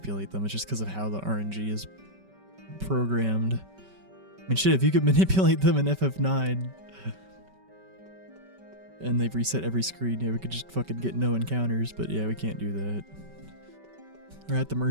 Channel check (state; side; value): late; left; 5.2 ms